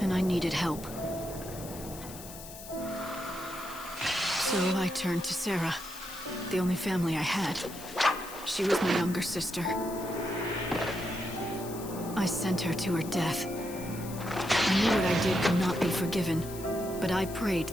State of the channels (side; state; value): left; noise; hiss, 14 dB below the sound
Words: and I needed help. So I turned to Sarah, the only family I had. She was my younger sister. I sent her to her death. I knew what I did could not be forgiven, but I prayed